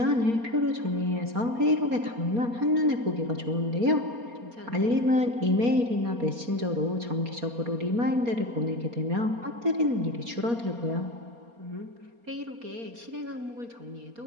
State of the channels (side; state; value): left; late; 4.3 ms